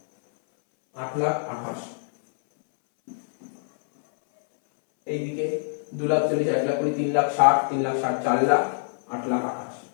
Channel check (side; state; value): right; silent; 62 dB below the other